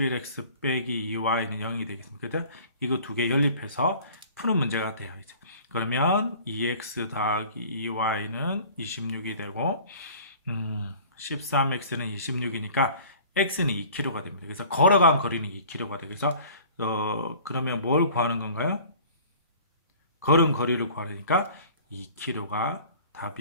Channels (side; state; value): both; inverted; correlation -0.47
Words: 빼기 2y는 0이 되겠습니다. 그래서 이거 두 개 연립해서 푸는 문제가 돼요. 이제. 그러면 2x 더하기 2y는 26이 되고 13x는 26이니까 x는 2km가 됩니다. 그래서 걸어간 거리는 2km가 되고, 그래서 그러면 뭘 구하는 건가요? 걸은 거리를 구하니까 2km가